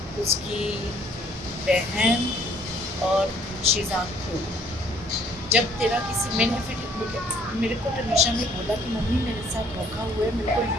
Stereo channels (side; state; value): both; normal; correlation 0.61